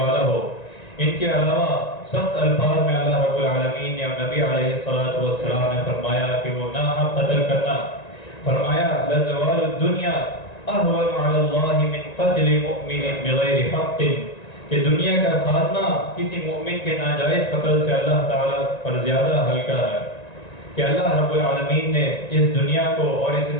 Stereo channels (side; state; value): right; late; 1.9 ms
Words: ہو۔ ان کے علاوہ سخت الفاظ میں اللہ رب العالمین نے اور نبی علیہ السلام نے فرمایا کہ وہ ناحق قتل کرنا، فرمایا لَزَوَالُ الدُّنْيَا أَهْوَنُ عَلَى اللَّهِ مِنْ قَتْلِ مُؤْمِنٍ بِغَيْرِ حَقٍ، کہ دنیا کا خاتمہ کسی مومن کے ناجائز قتل سے اللہ تعالیٰ پر زیادہ ہلکا ہے، کہ اللہ رب العالمین نے اس دنیا کو اور اس